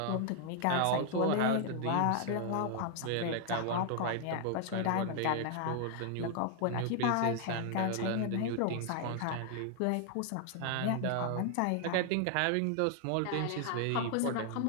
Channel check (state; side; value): different; both; correlation 0.00